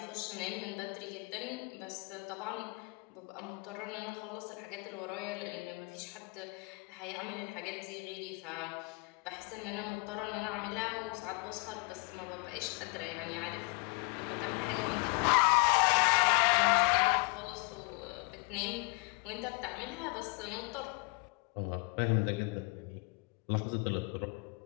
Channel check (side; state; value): right; quieter; 31.3 dB